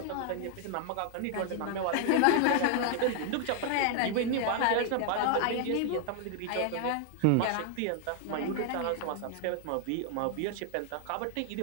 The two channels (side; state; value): both; different; correlation 0.00